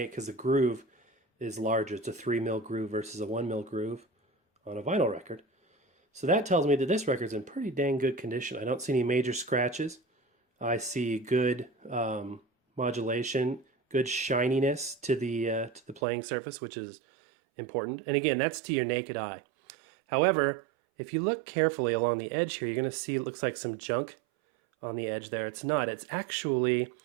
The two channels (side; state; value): left; drops out; at 16.0 s